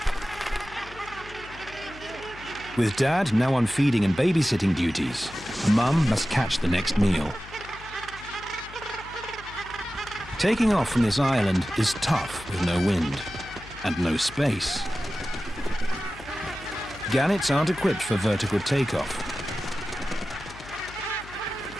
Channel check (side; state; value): left; noise; hum, 18 dB below the sound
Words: With Dad now on feeding and babysitting duties, Mum must catch the next meal. Taking off from this island is tough with no wind and no space. Gannets aren't equipped for vertical takeoff.